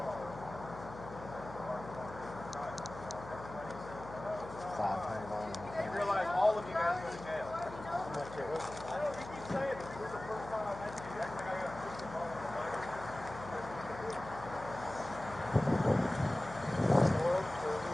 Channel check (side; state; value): left; noise; hum, 13 dB below the sound